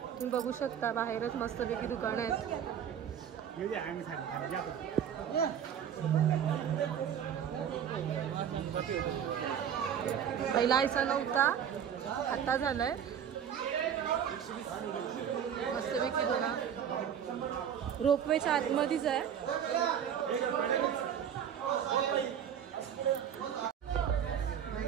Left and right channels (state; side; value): quieter; left; 8.7 dB